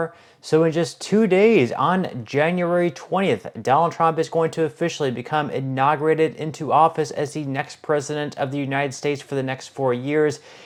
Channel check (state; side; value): identical; both; correlation 1.00